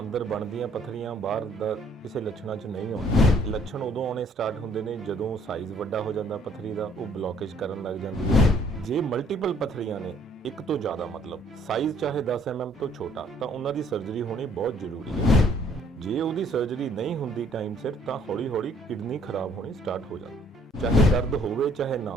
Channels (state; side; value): normal; both; correlation 0.62